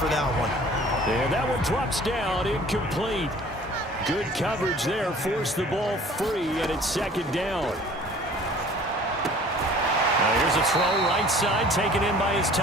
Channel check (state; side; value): normal; both; correlation 0.49